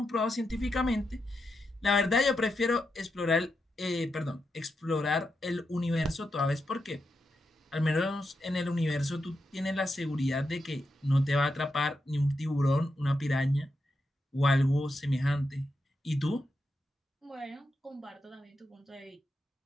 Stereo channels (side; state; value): both; normal; correlation 0.86